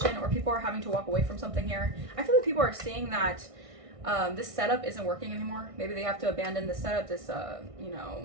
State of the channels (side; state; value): left; late; 1.6 ms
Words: or people are having to walk away from something here. I feel like people are seeing that this setup isn't working anymore. Maybe they have to abandon the setup, this, you